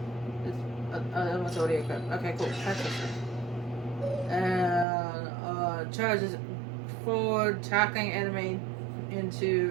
That one's already equipped. Okay, cool. And charges forward, attacking an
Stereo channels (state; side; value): drops out; left; at 4.9 s